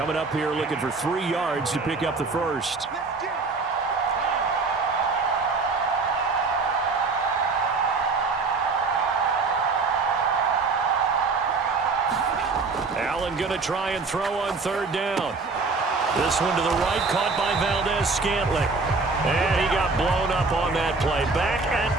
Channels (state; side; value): quieter; left; 4.0 dB